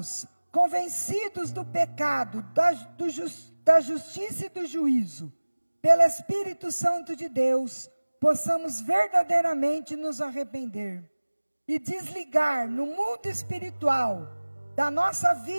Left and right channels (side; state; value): both; inverted; correlation -1.00